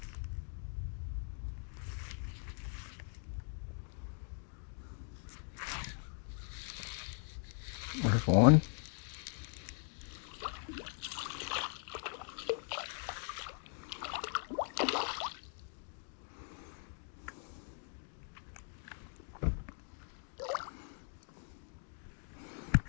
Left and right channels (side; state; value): right; silent; 51 dB below the other